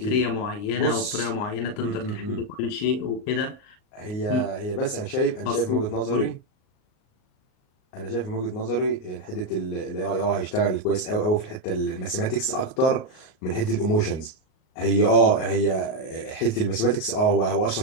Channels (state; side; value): late; right; 38 ms